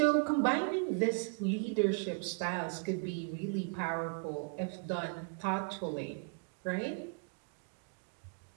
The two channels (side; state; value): left; quieter; 37.2 dB